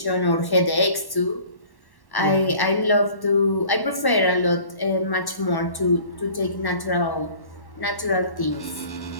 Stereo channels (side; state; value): right; late; 1.1 ms